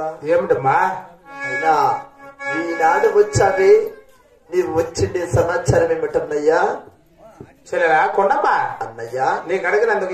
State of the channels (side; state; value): both; identical; correlation 1.00